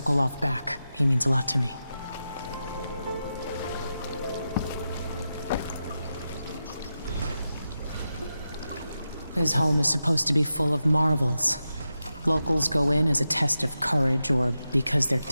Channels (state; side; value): inverted; both; correlation -0.90